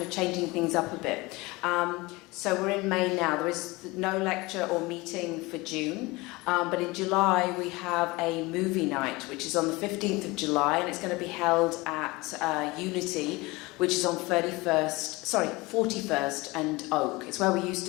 of changing things up a bit. So we're in May now. There is no lecture or meeting for June, but in July we have a movie night, which is on the 15th of July, and it's going to be held at Unity, which is on 41st and Oak. It's where we used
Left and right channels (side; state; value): right; quieter; 22.8 dB